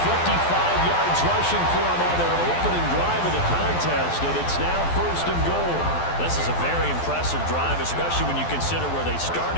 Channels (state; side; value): late; right; 12 ms